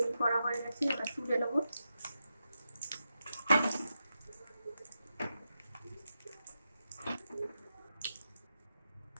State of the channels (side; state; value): both; inverted; correlation -0.87